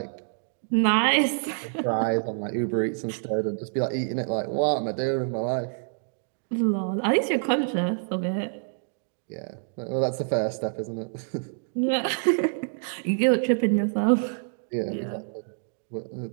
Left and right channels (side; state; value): left; silent; digital silence